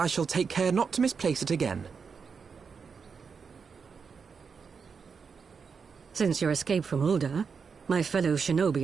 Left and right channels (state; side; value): quieter; left; 5.7 dB